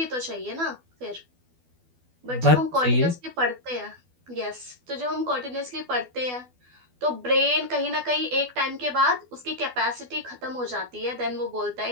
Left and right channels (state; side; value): late; left; 12 ms